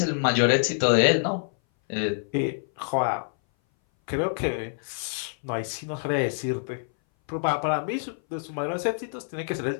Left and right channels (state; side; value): silent; right; 58 dB below the other